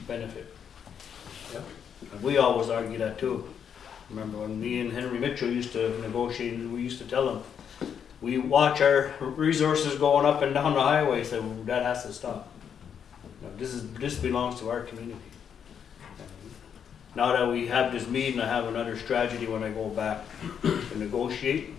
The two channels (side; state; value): right; quieter; 7.9 dB